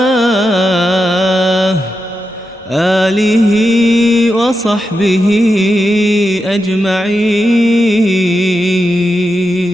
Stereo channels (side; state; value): both; normal; correlation 0.88